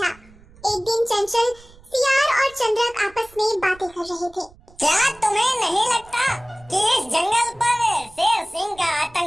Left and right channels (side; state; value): right; noise; rumble, 25 dB below the sound